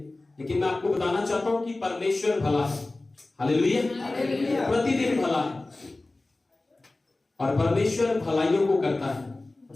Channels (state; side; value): quieter; right; 3.0 dB